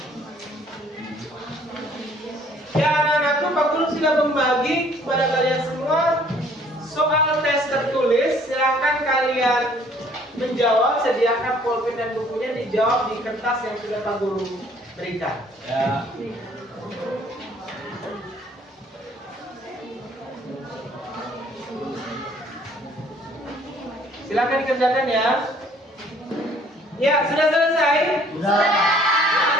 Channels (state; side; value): normal; both; correlation 0.58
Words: Ya anak-anakku, Pak Guru sudah membagi kepada kalian semua soal tes tertulis. Silahkan kalian menjawab, sediakan pulpen dan bukunya, dijawab di kertas yang sudah Pak Guru berikan. Ya. Silahkan dikerjakan ya. Ya, sudah selesai? Sudah.